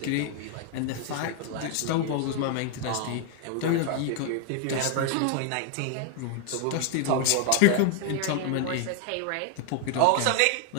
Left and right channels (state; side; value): different; both; correlation 0.00